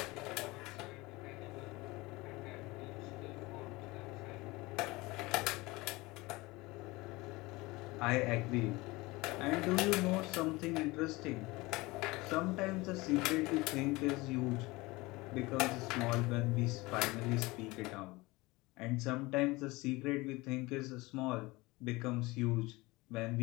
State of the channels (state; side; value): quieter; right; 22.2 dB